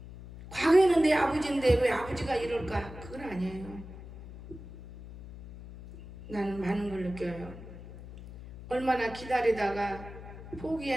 과거에는 내 아버지인데 왜 아버지가 이럴까? 그건 아니에요. 나는 많은 걸 느껴요. 얼마나 기다리다가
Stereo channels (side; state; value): left; noise; hum, 14 dB below the sound